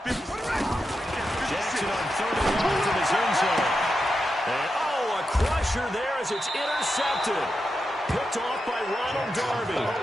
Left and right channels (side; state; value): both; normal; correlation 0.88